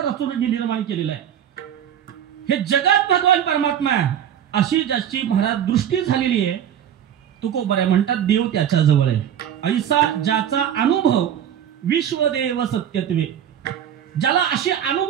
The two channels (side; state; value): left; quieter; 9.7 dB